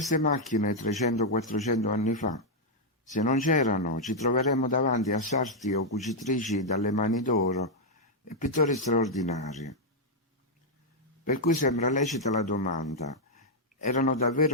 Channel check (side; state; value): both; normal; correlation -0.03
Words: macchine 300-400 anni fa. Se non c'erano, ci troveremmo davanti a sarti o cucitrici dalle mani d'oro e pittori straordinari. Per cui sembra lecita la domanda: erano